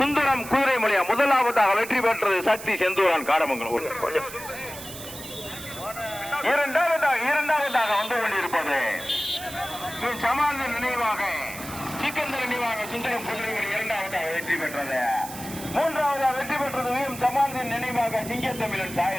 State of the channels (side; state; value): right; noise; hiss, 12 dB below the sound